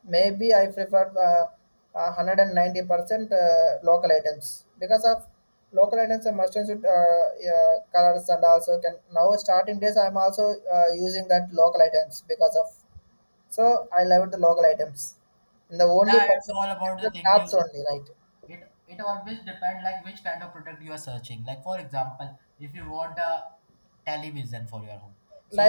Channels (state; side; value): inverted; both; correlation -1.00